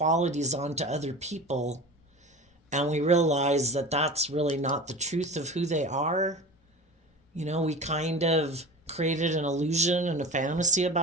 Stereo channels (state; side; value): normal; both; correlation 0.33